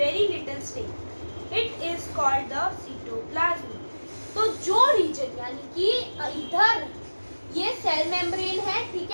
little space. It is called the cytoplasm. तो जो reason यानी कि इधर ये cell membrane है, ठीक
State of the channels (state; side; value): inverted; both; correlation -1.00